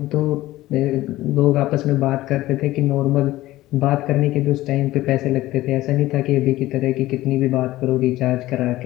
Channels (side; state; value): right; quieter; 16.6 dB